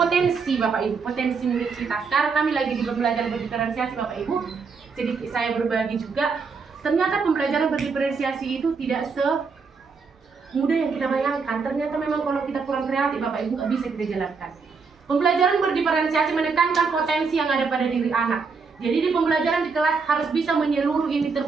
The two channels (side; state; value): left; quieter; 5.0 dB